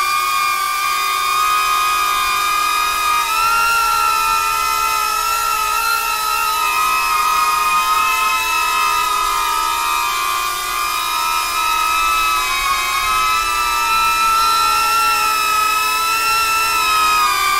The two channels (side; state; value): both; identical; correlation 1.00